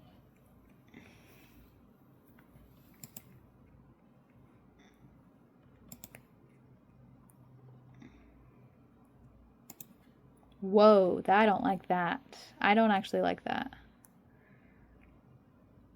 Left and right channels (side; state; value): both; identical; correlation 1.00